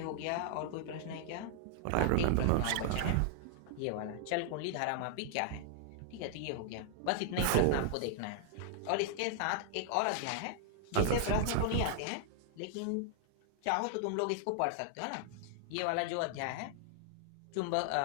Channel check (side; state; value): both; different; correlation -0.01